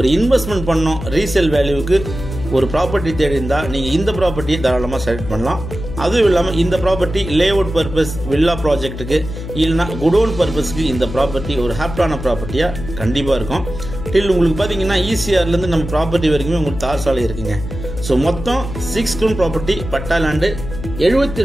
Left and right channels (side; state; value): left; noise; hum, 9 dB below the sound